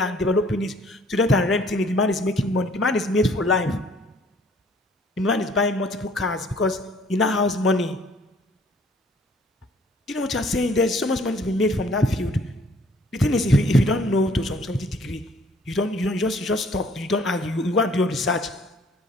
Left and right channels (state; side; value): normal; both; correlation 0.58